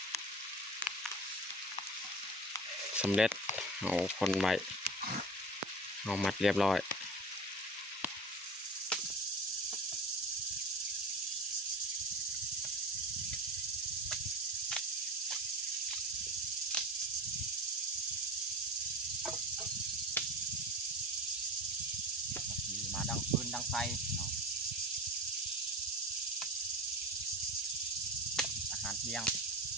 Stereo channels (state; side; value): normal; both; correlation 0.32